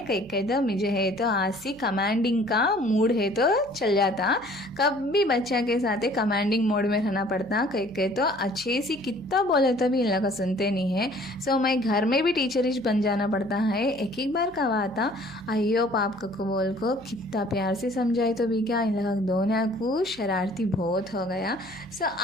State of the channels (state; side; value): noise; right; hum, 25 dB below the sound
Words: कहीं तो मुझे है तो आज से कमांडिंग का मूड है तो चल जाता। कभी बच्चा के साथ कमांडिंग मोड में रहना पड़ता। कहीं तो अच्छे से कितना बोले तो भी इन लोग का सुनते नहीं है। सो मैं घर में भी टीचरिश बन जाना पड़ता है। एक एक बार कहा आता अयो पाप को बोल को कितना प्यार से समझाए तो भी क्या, इन लोग दोनों को शरारती बहुत हो गया। सो